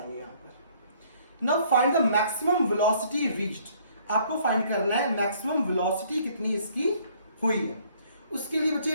यहां पर. Now find the maximum velocity reached. आपको फाइंड करना है मैक्सिमम वेलोसिटी कितनी इसकी हुई है. उसके लिए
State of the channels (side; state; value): both; inverted; correlation -0.61